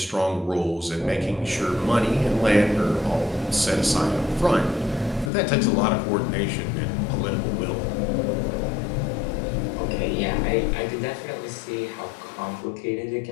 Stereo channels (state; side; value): drops out; right; at 5.3 s